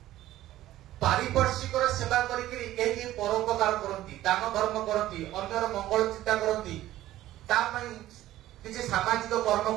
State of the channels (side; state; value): left; quieter; 14.5 dB